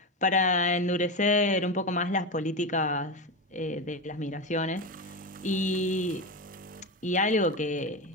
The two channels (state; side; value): normal; both; correlation 0.17